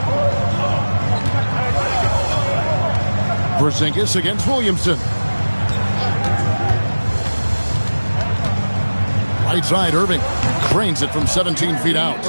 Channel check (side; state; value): both; inverted; correlation -1.00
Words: Porzingis against Williamson. Right side, Irving drains it from 17 feet out.